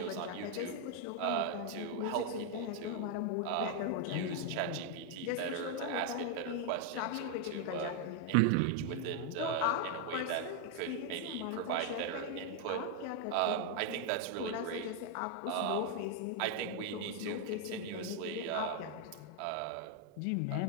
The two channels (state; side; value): different; both; correlation 0.00